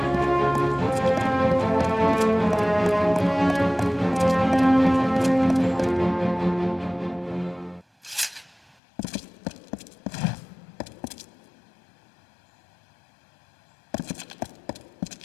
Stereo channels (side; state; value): right; drops out; at 8.8 s